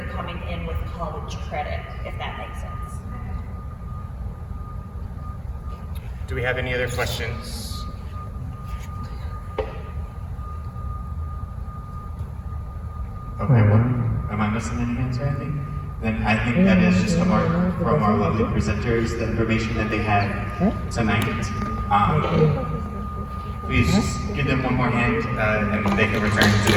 coming in with college credit, if that makes sense. Do we have any other questions? Okay, well, am I missing any answer, I think? Then I think that is just from our lovely presenters, the information that they had tonight. Please give them one more hand and they can return to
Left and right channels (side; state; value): both; identical; correlation 1.00